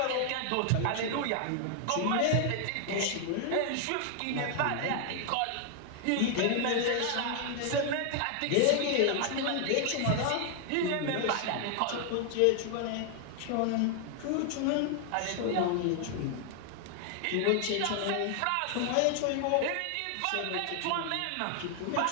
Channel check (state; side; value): different; both; correlation 0.00